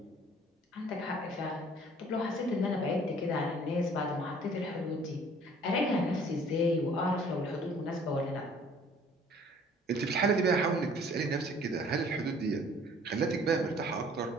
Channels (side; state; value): both; normal; correlation 0.54